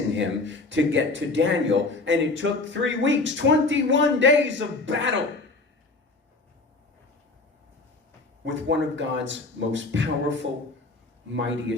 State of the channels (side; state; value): right; quieter; 3.3 dB